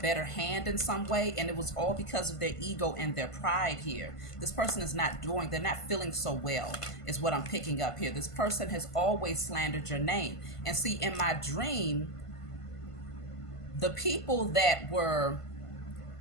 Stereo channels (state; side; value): late; right; 1.5 ms